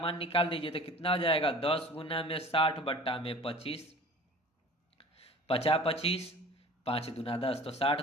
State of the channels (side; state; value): both; normal; correlation 0.44